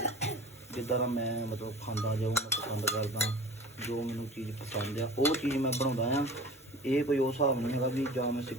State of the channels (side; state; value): both; normal; correlation 0.40